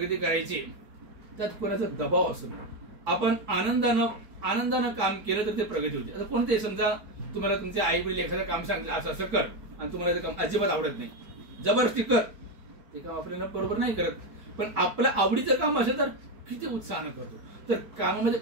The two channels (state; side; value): late; left; 4.7 ms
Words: करायची त्यात कोणाचा दबाव असू नये। आपण आनंदानं आनंदानं काम केलं तर ते प्रगती होते. आता कोणते समजा तुम्हाला तुमचे आई वडील एखादं काम सांगितलं असं असं कर आणि तुम्हाला ते काम अजिबात आवडत नाही, जबरदस्ती कर, ते काम आपल्याला बरोबर नाही करत. पण आपल्या आवडीचं काम असेल तर किती उत्साहानं करतो. तर कामामध्ये